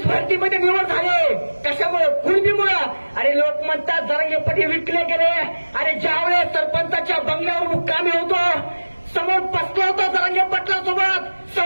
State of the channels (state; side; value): inverted; both; correlation -1.00